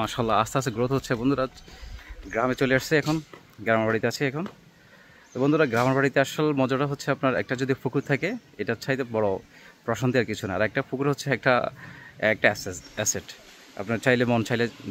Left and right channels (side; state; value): both; identical; correlation 1.00